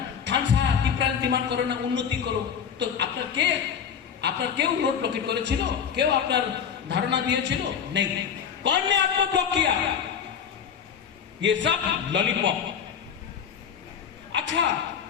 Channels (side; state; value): right; quieter; 7.5 dB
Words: খানসা টিপ্রাল ডিমান্ড করো না, উন্নতি করো। তো আপনার কেউ रोड ब्लॉकेट করেছিল? কেউ আপনার ধারণা দিয়েছিল? नहीं। कौन ने आपको ब्लॉक किया? ये सब लॉलीपॉप। अच्छा,